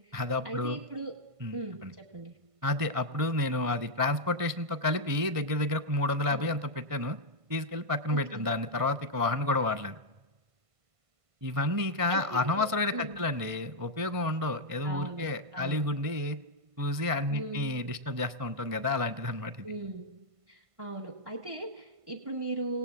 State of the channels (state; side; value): late; left; 1.5 ms